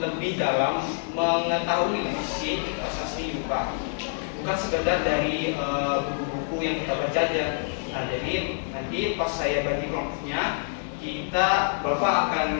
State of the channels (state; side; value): silent; right; digital silence